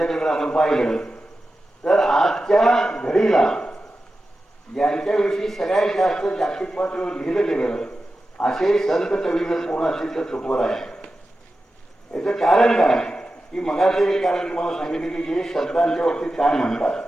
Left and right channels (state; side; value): normal; both; correlation 0.92